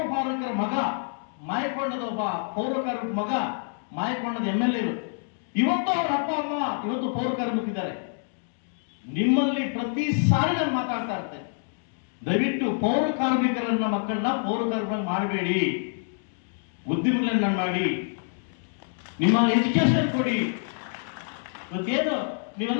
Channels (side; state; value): right; silent; 60 dB below the other